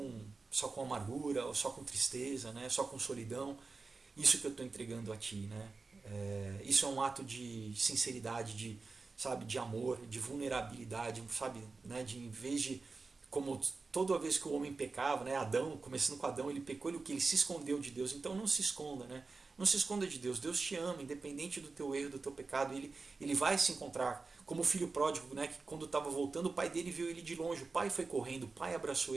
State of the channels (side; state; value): left; quieter; 4.1 dB